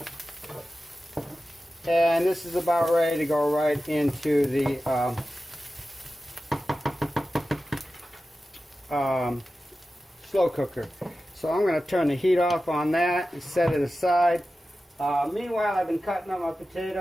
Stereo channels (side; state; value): both; normal; correlation 0.94